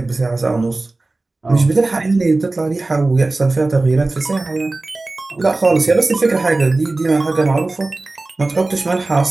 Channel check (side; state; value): left; quieter; 3.2 dB